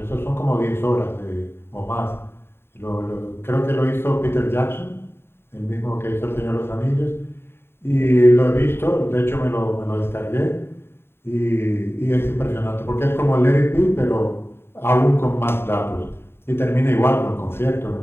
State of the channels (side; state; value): right; late; 0.11 ms